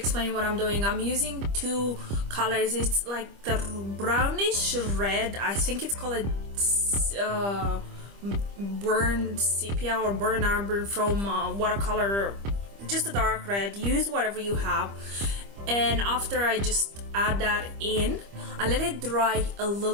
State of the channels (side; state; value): left; late; 25 ms